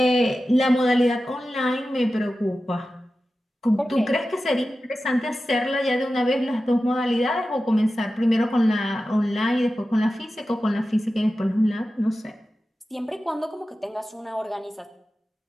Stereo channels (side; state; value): both; normal; correlation 0.94